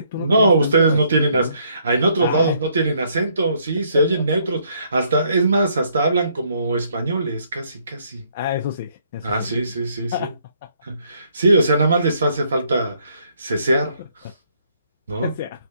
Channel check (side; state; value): both; inverted; correlation -0.68